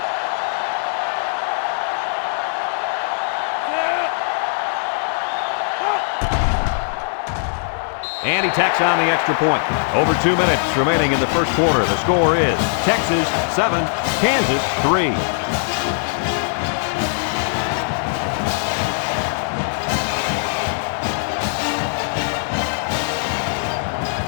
And he tacks on the extra point. Over 2 minutes remaining in the first quarter. The score is Texas 7, Kansas 3.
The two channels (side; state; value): right; silent; digital silence